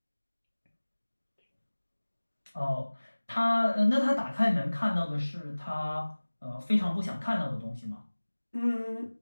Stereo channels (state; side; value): inverted; both; correlation -1.00